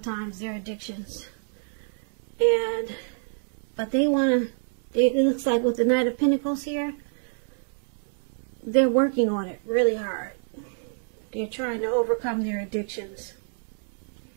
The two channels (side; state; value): left; silent; digital silence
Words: their addictions. But they want to, it looks like with the Knight of Pentacles here, they're working on it really hard. They're trying to overcome their addictions.